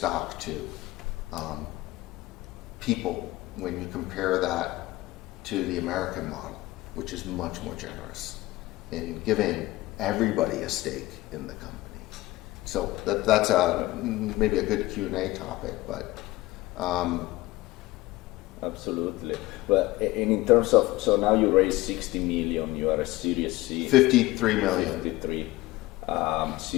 to people when you compare that to the American model, which is much more generous in giving everybody a stake in the company. So that's maybe a good Q&A topic, but absolutely. But in terms of, so now you raised 60 million, you are a Series C. 53 million. 53.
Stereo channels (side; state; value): right; quieter; 18.9 dB